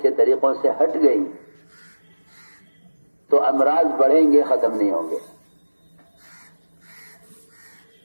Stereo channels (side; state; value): both; inverted; correlation -1.00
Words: کے طریقوں سے ہٹ گئی تو امراض بڑھیں گے، ختم نہیں ہوں گے.